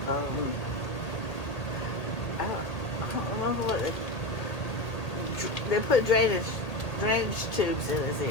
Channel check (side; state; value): right; late; 1.8 ms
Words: I don't remember what they put drainage tubes in his